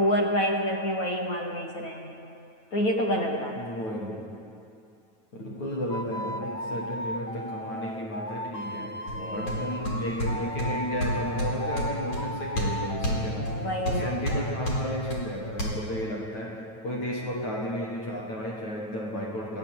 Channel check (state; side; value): late; right; 9.2 ms